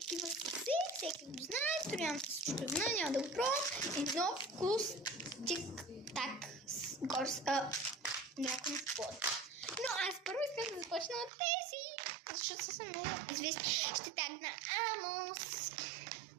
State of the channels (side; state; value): left; drops out; at 11.3 s